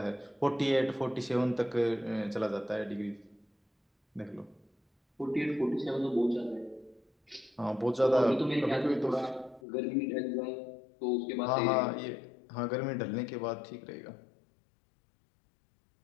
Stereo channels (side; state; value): right; drops out; at 9.6 s